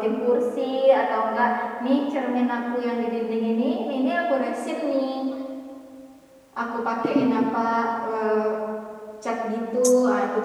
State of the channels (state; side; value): identical; both; correlation 1.00